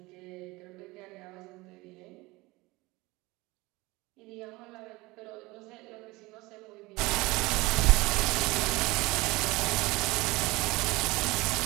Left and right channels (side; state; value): left; quieter; 22.1 dB